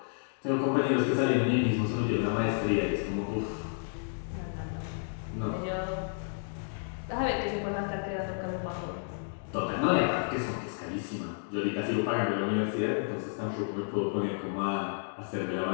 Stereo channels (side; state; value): right; silent; digital silence